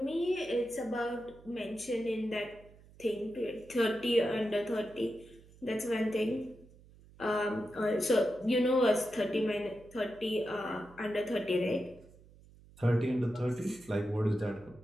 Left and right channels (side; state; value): right; noise; hum, 24 dB below the sound